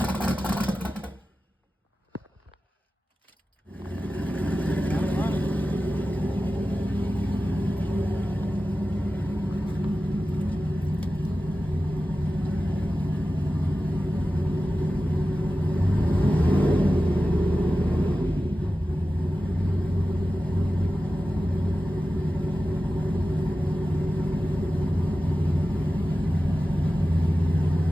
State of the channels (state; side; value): normal; both; correlation 0.94